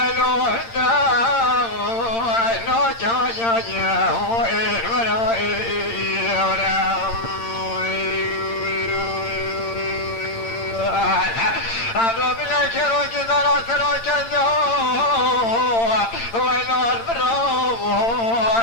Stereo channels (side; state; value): right; late; 8.8 ms